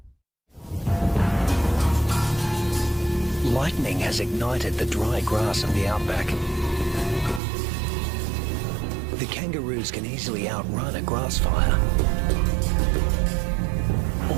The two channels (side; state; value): left; drops out; at 7.4 s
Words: Lightning has ignited the dry grass of the outback. The kangaroos can easily outrun a grass fire.